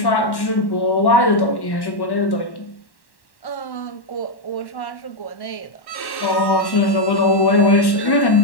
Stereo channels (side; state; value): right; late; 1.1 ms